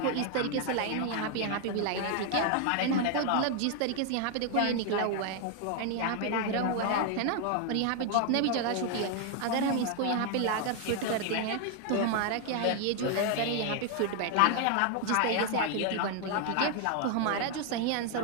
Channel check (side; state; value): both; different; correlation 0.00